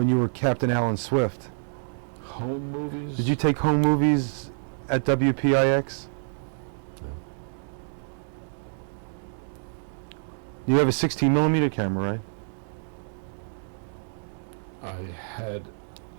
you were Captain Alan Swift? Home movies? Did you take home movies at WPIX? No. You have a 16 millimeter camera, right? I had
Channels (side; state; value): left; silent; 60 dB below the other